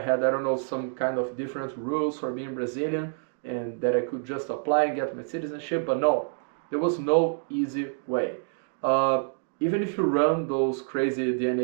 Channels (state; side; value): silent; left; digital silence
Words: I don't know, some kind of different rules for being Brazilian, and that I could just apply and get my citizenship, but no, there was no easy way. Even if you run those crazy